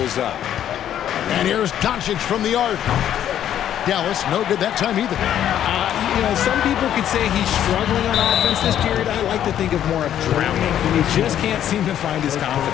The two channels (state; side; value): quieter; right; 10.6 dB